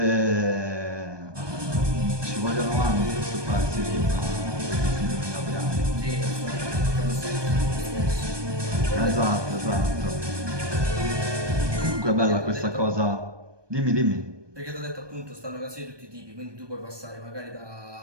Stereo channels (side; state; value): left; late; 1.2 ms